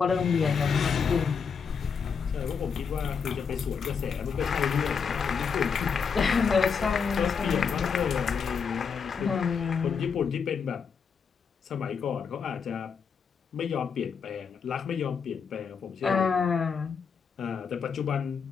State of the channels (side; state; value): right; quieter; 6.1 dB